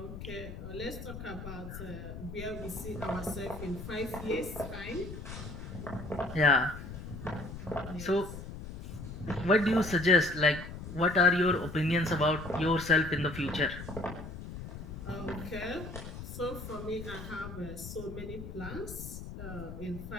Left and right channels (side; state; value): left; noise; rumble, 10 dB below the sound